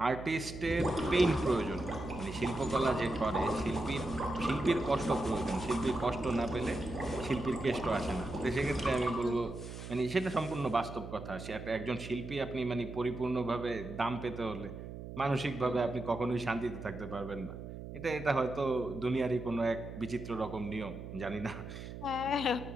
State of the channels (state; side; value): noise; right; hum, 10 dB below the sound